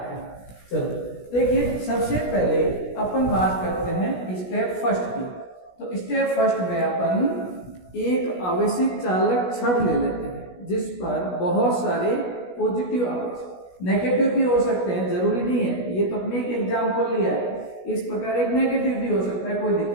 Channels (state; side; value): late; right; 16 ms